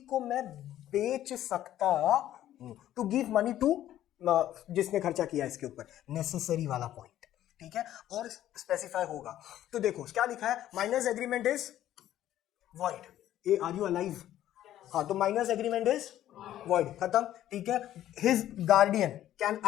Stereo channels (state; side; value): quieter; right; 12.6 dB